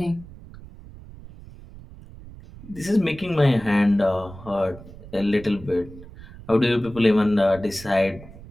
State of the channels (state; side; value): noise; right; rumble, 18 dB below the sound